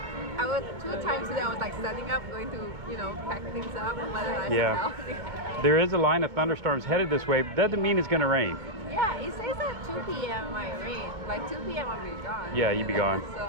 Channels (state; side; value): late; left; 2.2 ms